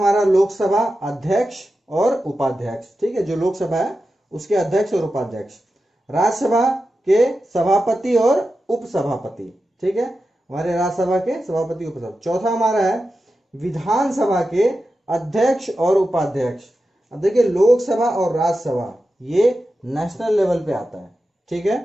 लोकसभा अध्यक्ष और उपाध्यक्ष, ठीक है, जो लोकसभा है उसके अध्यक्ष और उपाध्यक्ष। राज्यसभा के सभापति और उपसभापति, ठीक है, हमारे राज्यसभा के सभापति उपसभापति। चौथा हमारा है विधानसभा के अध्यक्ष और उपाध्यक्ष। अब देखिए लोकसभा और राज्यसभा ये नेशनल लेवल पे आता है, ठीक है,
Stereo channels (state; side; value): normal; both; correlation 0.91